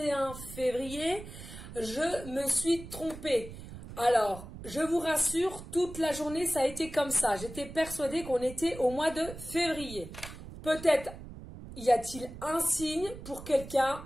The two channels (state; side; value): noise; right; rumble, 13 dB below the sound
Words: février, je me suis trompée. Alors, je vous rassure, toute la journée ça a été comme ça. J'étais persuadée qu'on était au mois de février. Peut-être y a-t-il un signe pour quelqu'un?